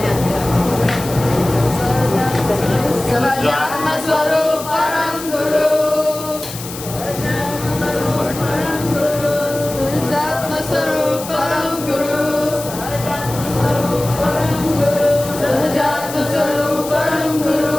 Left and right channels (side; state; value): left; noise; hiss, 11 dB below the sound